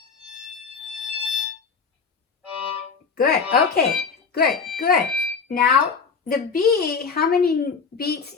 Good. Okay. Good. Good. Now the B, how many beats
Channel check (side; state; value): right; quieter; 5.4 dB